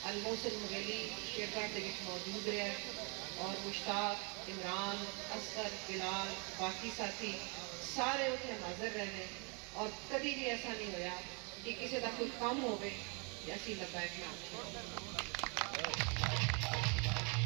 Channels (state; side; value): quieter; left; 34.5 dB